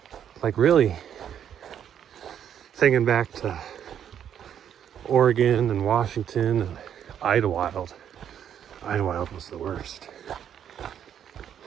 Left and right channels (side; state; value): left; quieter; 9.3 dB